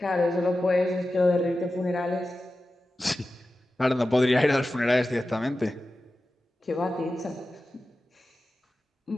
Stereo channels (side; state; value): both; normal; correlation 0.93